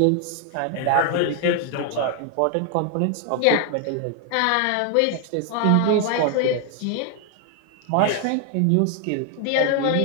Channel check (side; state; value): both; different; correlation 0.00